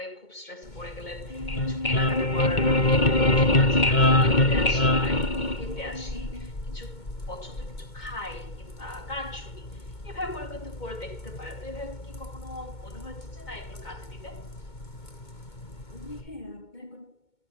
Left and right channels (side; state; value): right; late; 2.2 ms